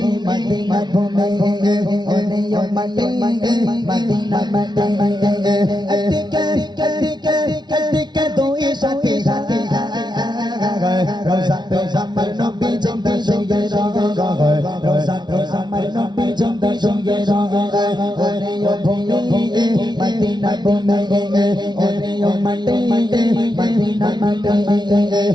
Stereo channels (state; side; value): late; left; 0.20 ms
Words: মদিনা ভূমি, ওরে ও মাটি মদিনা মাটি, আতিকে আতিকে আতিকে দুই সাথী সাথী, রোজাতে আমার নবী জিন্দা সঙ্গে রহে, রোজাতে আমার নবী জিন্দা সঙ্গে রহে। ওরে ও ভূমি মদিনা ভূমি, ওরে ও মাটি মদিনা মাটি,